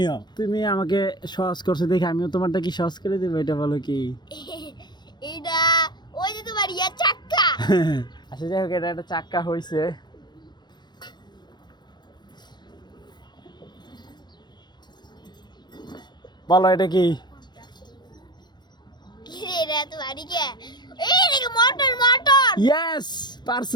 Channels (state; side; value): late; right; 0.21 ms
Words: তুমি আমাকে সহজ করছো দেখে আমিও তোমারটা কি সহজ করে দেবো, এটা বলো কি? এটা ওই যে তোমার ইয়া চাক্কা। আচ্ছা যাই হোক, এটা একটা চাক্কা হয়েছে। বলো এটা কি? কি রে, এটা তো বাড়ি কে? এই দেখো, মোটর মোটর। ইয়েস,